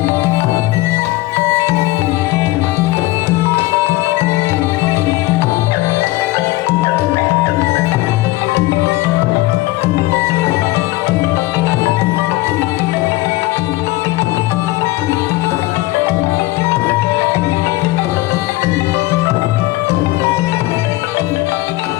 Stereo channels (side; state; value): right; quieter; 19.0 dB